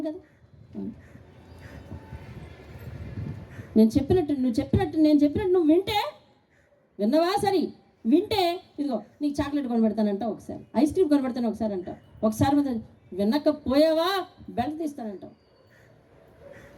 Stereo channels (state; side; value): identical; both; correlation 1.00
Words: కదా? నేను చెప్పినట్టు నువ్వు వింటే విన్నవా? సరే వింటే ఇదిగో నీకు చాక్లెట్ కొనబెడతానంట, ఒకసారి ఐస్ క్రీమ్ కొనబెడతాను ఒకసారి అంటావు, ఒకసారి వినకపోయావా బెల్ట్ తీస్తానంటావు.